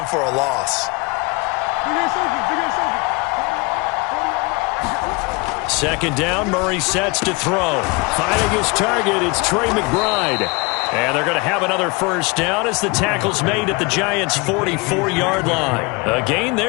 for a loss. Second down, Murray sets to throw. Finding his target, it's Trey McBride. And they're going to have another first down as the tackle's made at the Giants' 44-yard line. A gain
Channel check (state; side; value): quieter; right; 26.5 dB